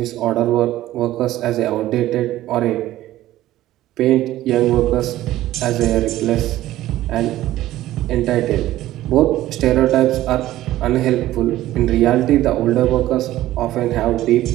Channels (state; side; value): quieter; left; 14.8 dB